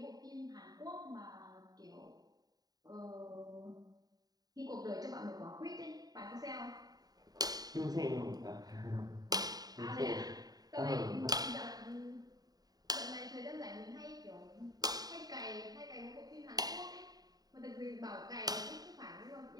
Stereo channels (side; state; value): left; late; 0.19 ms